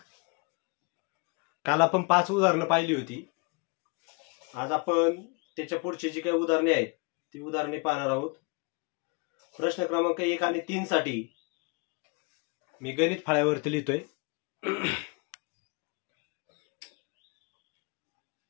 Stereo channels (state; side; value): quieter; right; 31.1 dB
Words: काल आपण 5 उदाहरणं पाहिली होती. आज आपण त्याच्या पुढची जी काही उदाहरणे आहेत ती उदाहरणे पाहणार आहोत. प्रश्न क्रमांक 1 आणि 3 साठी मी गणित फळ्यावरती लिहितोय.